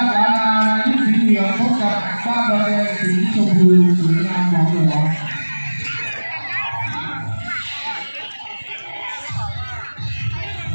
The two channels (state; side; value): inverted; both; correlation -1.00